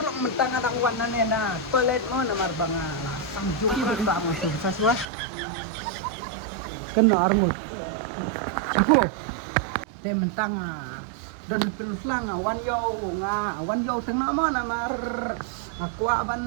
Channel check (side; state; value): left; drops out; at 5.1 s